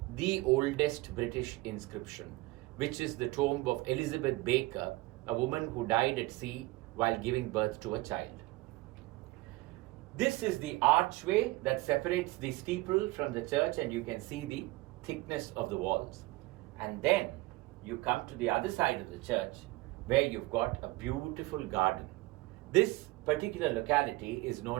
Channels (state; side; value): quieter; left; 20.8 dB